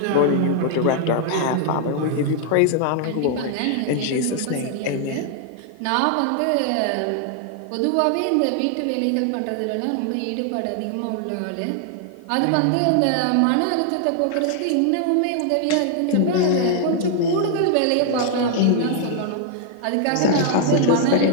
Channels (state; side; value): different; both; correlation 0.00